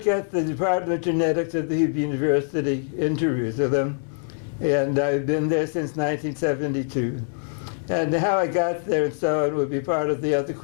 the Department of Genetics at the Hebrew University in Jerusalem, and I've been there since 1972. And how I got there and so on will be part of the other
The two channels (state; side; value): silent; right; digital silence